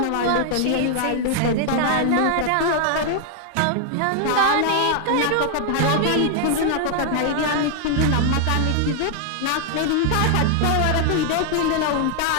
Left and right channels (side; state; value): both; different; correlation 0.00